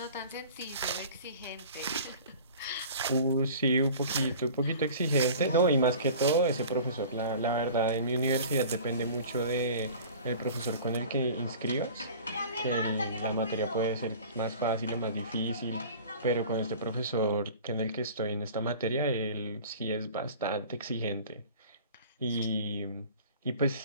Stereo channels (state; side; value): inverted; both; correlation -0.42